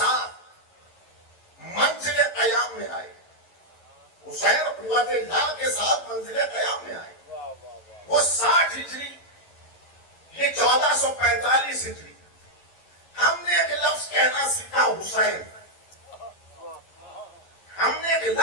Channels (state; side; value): late; right; 11 ms